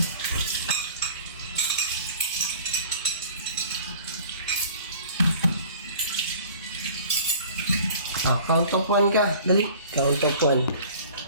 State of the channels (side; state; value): both; inverted; correlation -0.47